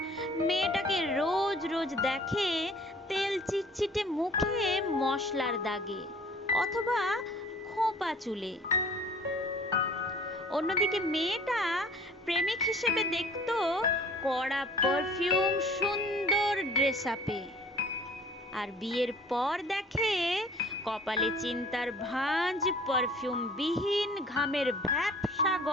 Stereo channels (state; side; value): normal; both; correlation 0.50